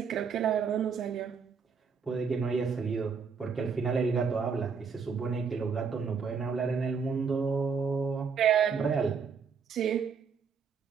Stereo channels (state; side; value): quieter; left; 5.9 dB